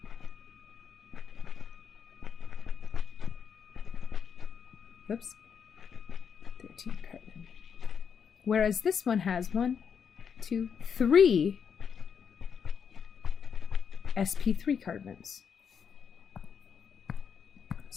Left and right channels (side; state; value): right; quieter; 7.0 dB